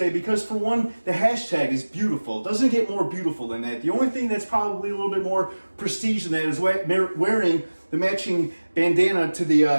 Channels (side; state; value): both; inverted; correlation -1.00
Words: because, for one, the hashtag is beautiful. It doesn't get more beautiful than that. The only thing that's probably a little bit more prestige than that is wearing the matching bandana to